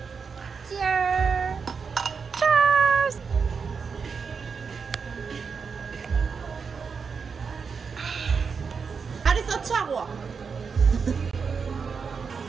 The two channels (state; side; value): quieter; left; 5.6 dB